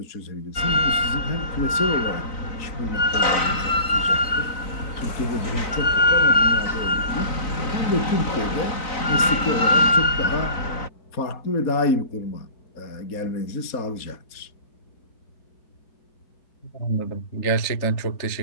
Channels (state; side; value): late; right; 3.9 ms